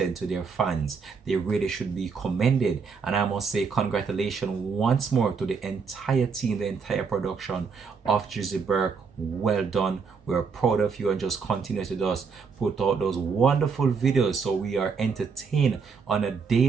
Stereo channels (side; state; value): left; quieter; 5.5 dB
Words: to their fans, they really should be commended. And I must say congratulations once more to the entire team, the entire production of Drizzy Burke. Well done. We're proud of you, and just continue to just put out those wonderful videos so we are entertained on a